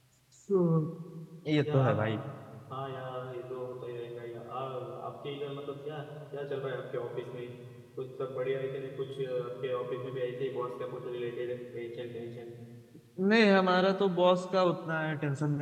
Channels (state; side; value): identical; both; correlation 1.00